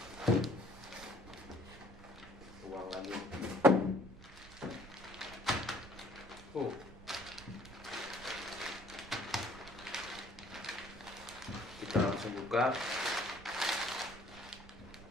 buang lagi. Kita langsung buka.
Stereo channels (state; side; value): noise; right; rumble, 17 dB below the sound